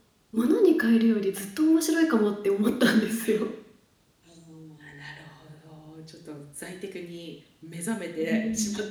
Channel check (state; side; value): identical; both; correlation 1.00